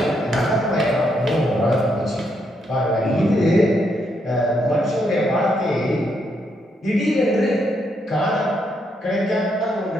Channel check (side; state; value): both; normal; correlation 0.77